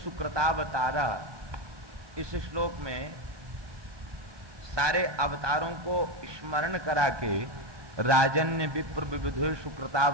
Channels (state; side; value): late; left; 1.2 ms